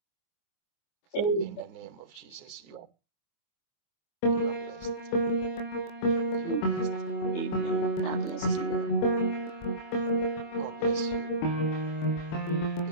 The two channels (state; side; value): late; right; 24 ms